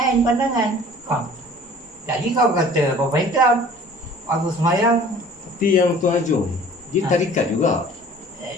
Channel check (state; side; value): normal; both; correlation 0.48